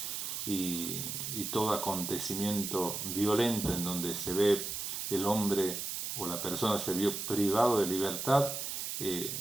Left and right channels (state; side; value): noise; right; hiss, 4 dB below the sound